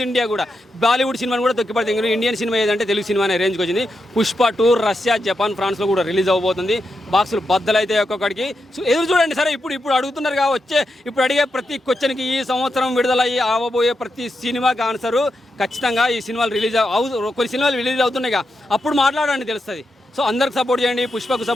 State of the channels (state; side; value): normal; both; correlation 0.86